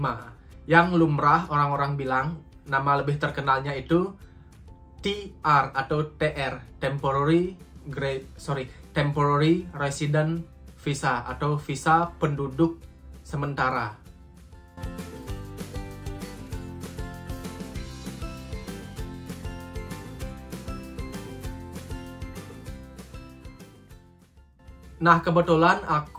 Yang lumrah orang-orang bilang nama lebih terkenalnya itu TR atau TR, temporary resident visa atau visa penduduk sementara. Nah, kebetulan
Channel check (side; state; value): both; identical; correlation 1.00